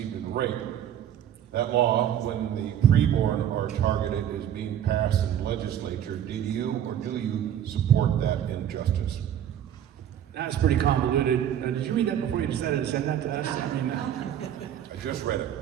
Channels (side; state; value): left; quieter; 10.2 dB